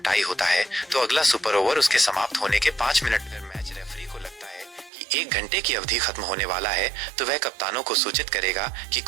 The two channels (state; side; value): drops out; left; at 4.9 s